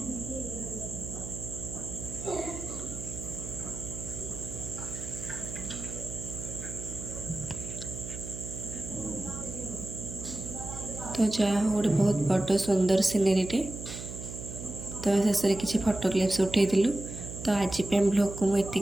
तो जहाँ हो गोटे बहुत बड़ सुंदर सीनेरीटे। तो शेष में किसी फोटो क्लिप्स उठेलु। तो आज ब्लॉग को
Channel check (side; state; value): right; noise; hum, 9 dB below the sound